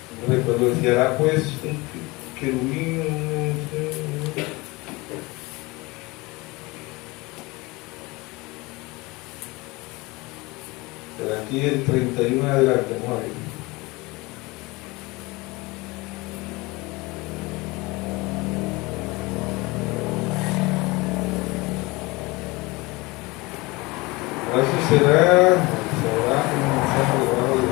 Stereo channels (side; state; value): right; quieter; 23.6 dB